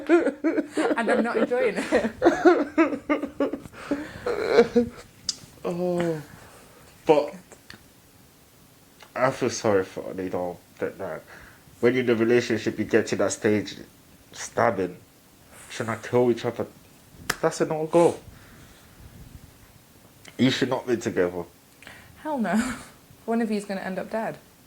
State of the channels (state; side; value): identical; both; correlation 1.00